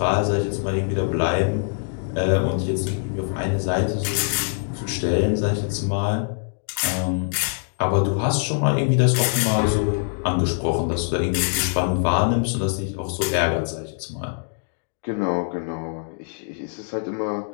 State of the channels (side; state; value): right; silent; digital silence